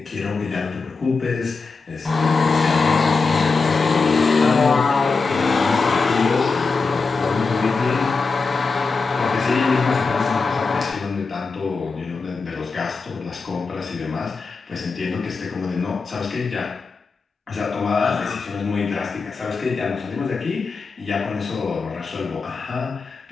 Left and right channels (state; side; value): quieter; right; 4.4 dB